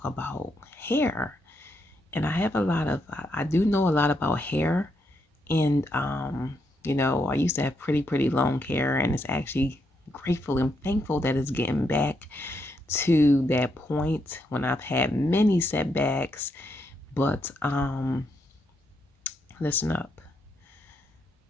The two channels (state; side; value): normal; both; correlation 0.79